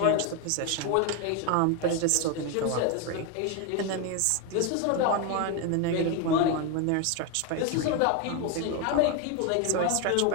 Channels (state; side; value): different; both; correlation 0.01